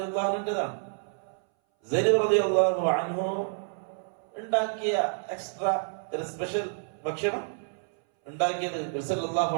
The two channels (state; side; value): silent; left; 59 dB below the other